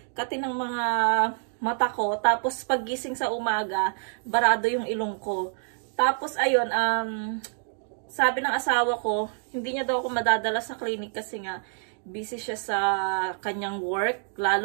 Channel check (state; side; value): silent; left; digital silence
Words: ng mga mata ko. Tapos, paggising sa umaga, barado yung ilong ko. Tapos, ayun, sabi ng asawa ko, hindi niya daw ako madadala sa clinic kasi nga, busy siya sa kanyang work.